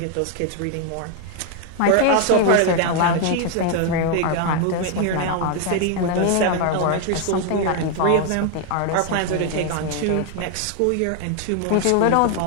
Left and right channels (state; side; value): different; both; correlation 0.00